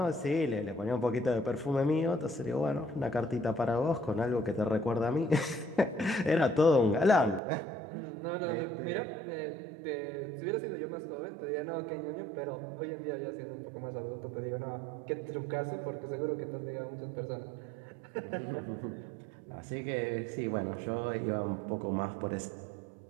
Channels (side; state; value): left; drops out; at 7.4 s